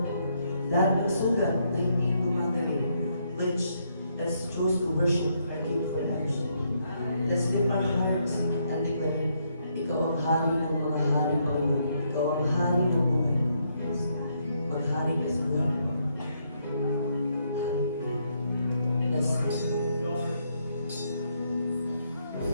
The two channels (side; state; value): both; inverted; correlation -0.75